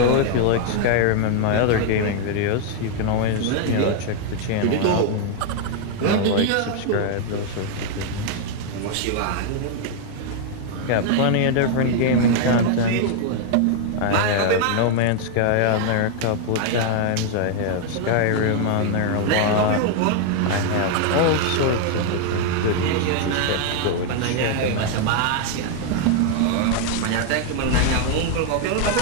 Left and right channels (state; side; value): different; both; correlation 0.00